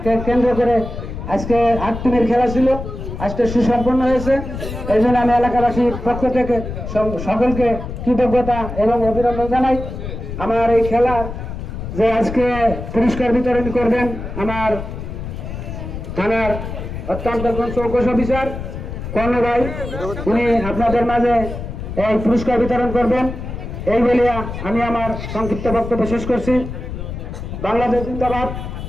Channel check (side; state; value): left; noise; rumble, 7 dB below the sound